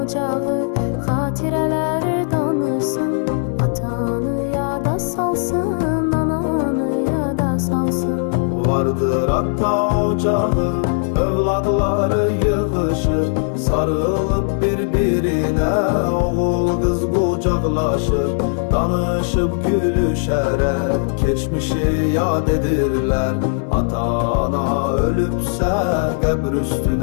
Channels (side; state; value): right; silent; digital silence